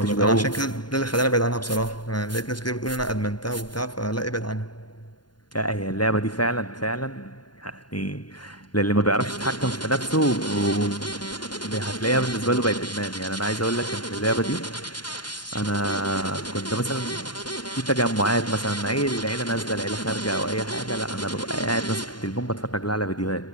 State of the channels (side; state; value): right; late; 0.71 ms